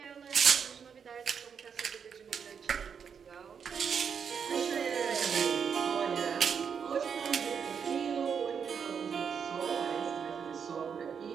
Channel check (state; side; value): quieter; left; 6.9 dB